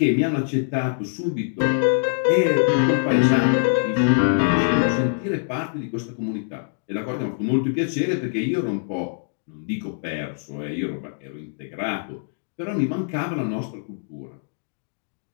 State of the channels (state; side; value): silent; right; digital silence